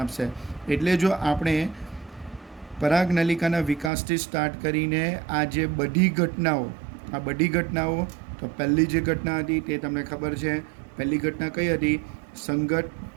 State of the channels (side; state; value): left; drops out; at 3.9 s